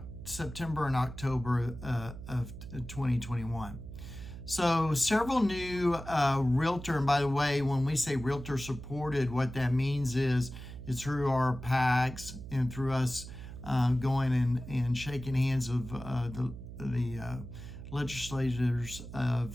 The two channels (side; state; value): right; noise; hum, 11 dB below the sound